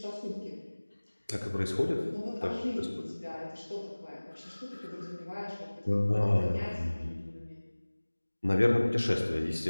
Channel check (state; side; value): inverted; both; correlation -1.00